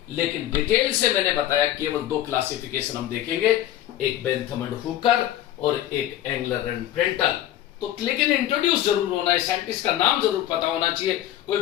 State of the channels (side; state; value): right; quieter; 12.8 dB